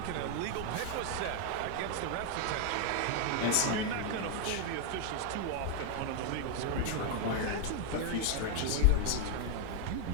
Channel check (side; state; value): both; different; correlation 0.00